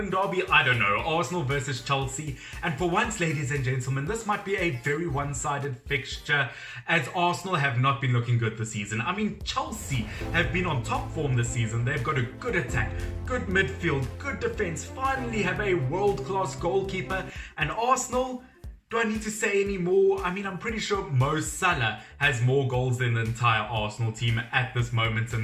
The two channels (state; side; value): identical; both; correlation 1.00